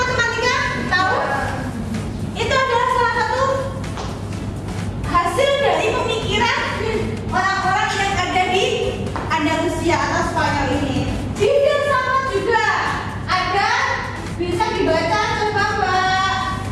tahu? Itu adalah salah satu hasil dari pemikiran orang-orang yang ada di Andalusia atau Spanyol ini. Di filsafat juga ada, bisa dibaca, coba Mbak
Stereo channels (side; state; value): both; identical; correlation 1.00